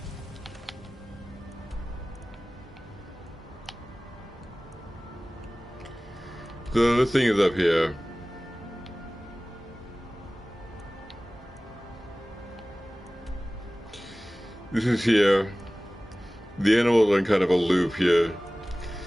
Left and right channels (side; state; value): both; normal; correlation 0.98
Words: So this thing is up here. This is here. The animals are in kind of a loop here.